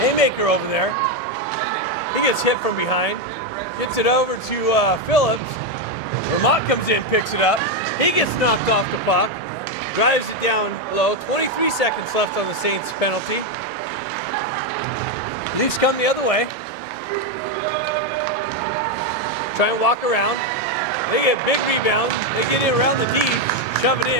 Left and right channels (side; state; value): both; normal; correlation 0.06